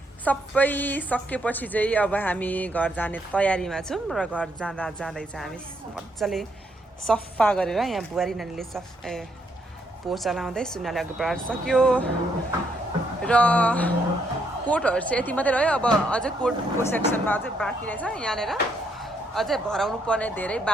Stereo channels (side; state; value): both; normal; correlation 0.74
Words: सबै सकेपछि चाहिँ अब हामी घर जाने तयारीमा छौँ र घर जाँदै चाहिँ हामी मजाले सफा गरेर यहाँ बुहारी नानीले पोचा लाउँदै सुनाले अघि बढाएर सक्यो र कोटहरू चाहिँ यति मात्रै रह्यो अब अझै कोटको सेक्सनमा अझै बाँकी रहेछ यहाँनिर अझै भराउनु पर्ने धेरै